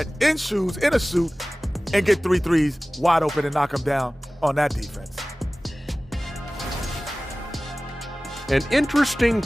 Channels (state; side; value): normal; both; correlation 0.98